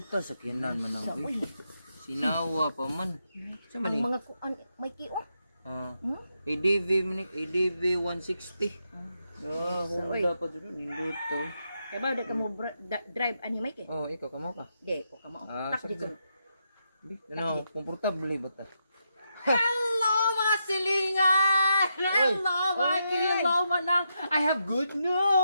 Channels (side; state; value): both; inverted; correlation -0.82